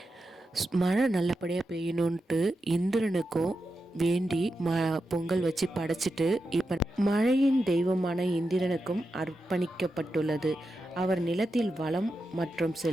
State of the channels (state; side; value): normal; both; correlation 0.89